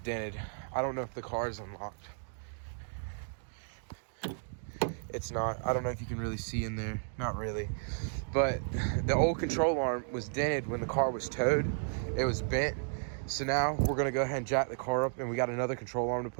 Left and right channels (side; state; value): left; silent; digital silence